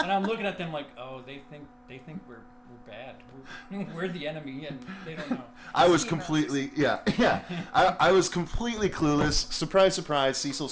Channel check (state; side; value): identical; both; correlation 1.00